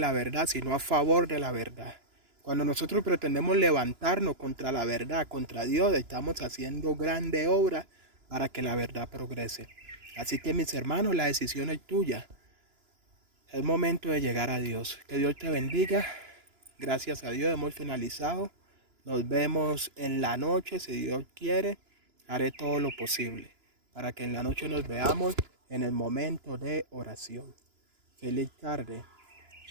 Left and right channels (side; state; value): left; late; 2.9 ms